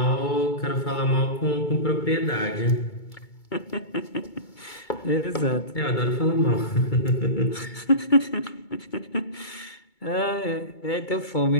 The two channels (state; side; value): late; right; 2.2 ms